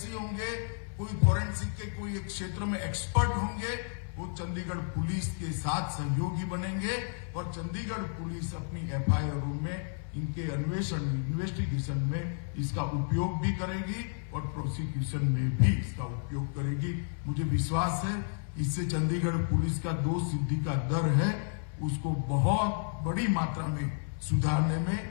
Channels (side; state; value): right; silent; 57 dB below the other